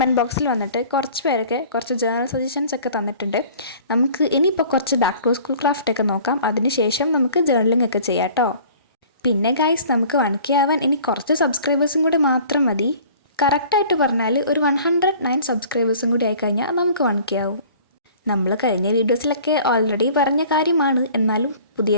ബോക്സിൽ വന്നിട്ട് കുറച്ച് പേരൊക്കെ കുറച്ച് ജേർണൽ സജഷൻസ് ഒക്കെ തന്നിട്ടുണ്ട്. നമുക്ക് ഇനിയിപ്പോൾ കുറച്ച് ബാക്ക് ടു സ്കൂൾ ക്രാഫ്റ്റൊക്കെ നോക്കാം. അതിനുശേഷം നമുക്ക് ജേർണലിംഗ് ഒക്കെ ചെയ്യാം കേട്ടോ. പിന്നെ ഗൈസ്, നമുക്ക് 1K ആവാൻ ഇനി കുറച്ച് സബ്സ്ക്രൈബേഴ്സും കൂടി മാത്രം മതി. കറക്റ്റായിട്ട് പറഞ്ഞാൽ ഒരു 109 സബ്സ്ക്രൈബേഴ്സും കൂടി ആയിക്കഴിഞ്ഞാൽ നമുക്ക് 1K ആവും. നമ്മൾ കഴിഞ്ഞ വീഡിയോസിലൊക്കെ ഓൾറെഡി പറഞ്ഞ കാര്യമാണ്. എന്നാലും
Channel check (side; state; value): both; inverted; correlation -0.48